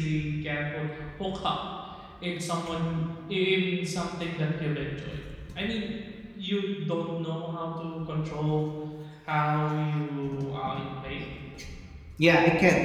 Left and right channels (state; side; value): identical; both; correlation 1.00